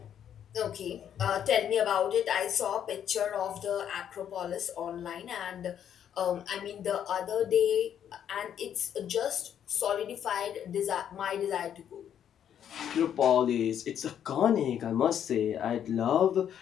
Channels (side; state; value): right; quieter; 9.4 dB